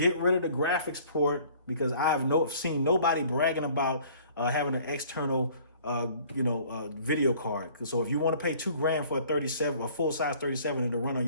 rid of the graphics port, because I have seen nobody bragging about having an external, video card. So if you want to pay $2,000 for a full size 37 to run on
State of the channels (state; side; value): inverted; both; correlation -0.54